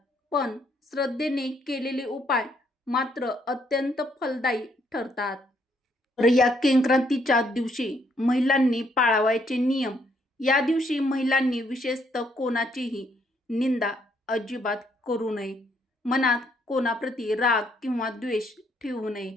पण श्रद्धेने केलेले उपाय मात्र अत्यंत फलदायी ठरतात. तर या संक्रांतीच्या दिवशी महिलांनी पाळावयाचे नियम. या दिवशी महिलांनी विशेषतः कोणाचीही निंदा अजिबात करू नये. मनात कोणाप्रती राग किंवा द्वेष ठेवू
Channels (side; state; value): both; normal; correlation 0.71